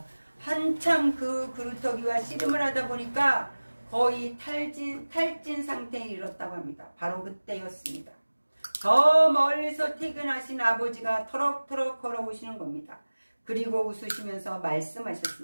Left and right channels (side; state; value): both; inverted; correlation -1.00